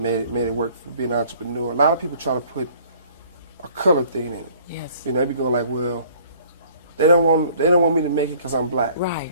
made it work for being an entrepreneur. A lot of people try to put a color thing in it. Yes. You know, they be going like, well, they don't want me to make it because I'm black. Right.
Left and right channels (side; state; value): both; inverted; correlation -0.55